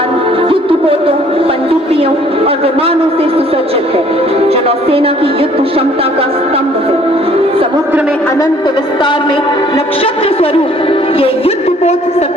और विमानों से सुसज्जित है, जो नौसेना की युद्ध क्षमता का स्तंभ है। समुद्र में अनंत विस्तार में नक्षत्र स्वरूप ये युद्धपोत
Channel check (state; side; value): normal; both; correlation 0.58